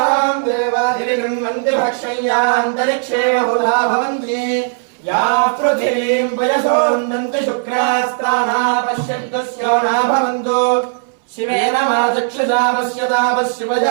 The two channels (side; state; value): left; silent; 69 dB below the other